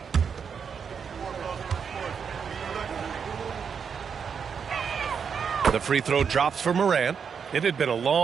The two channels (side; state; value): left; quieter; 6.6 dB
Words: The free throw drops for Morant. It had been a